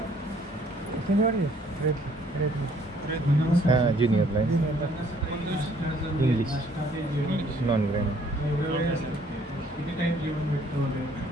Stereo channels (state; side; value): normal; both; correlation 0.62